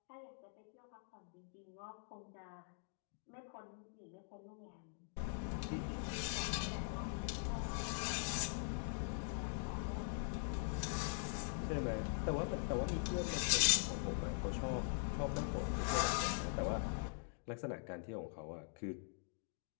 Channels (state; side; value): silent; right; digital silence